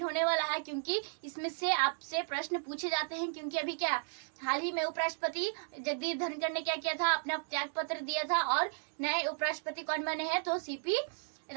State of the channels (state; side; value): silent; left; digital silence